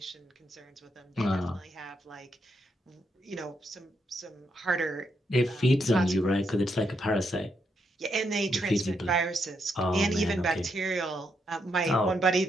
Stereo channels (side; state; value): both; normal; correlation 0.79